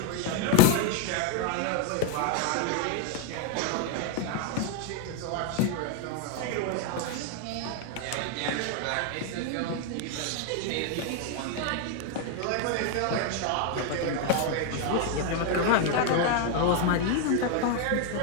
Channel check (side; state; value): both; different; correlation 0.01